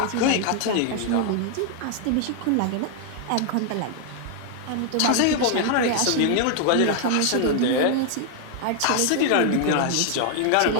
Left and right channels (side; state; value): both; different; correlation 0.00